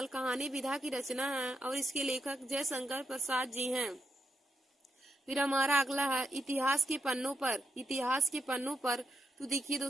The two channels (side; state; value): both; normal; correlation 0.82